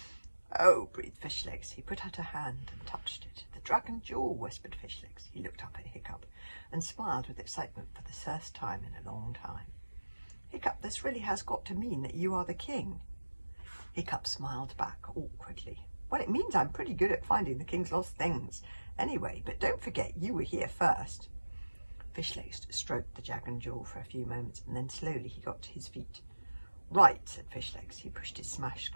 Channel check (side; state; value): both; inverted; correlation -1.00